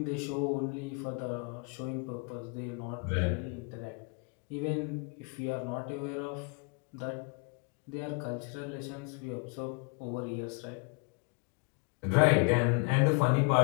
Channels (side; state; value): right; quieter; 34.2 dB